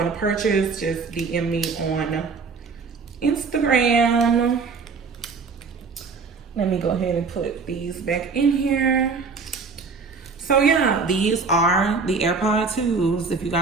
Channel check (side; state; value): left; quieter; 4.7 dB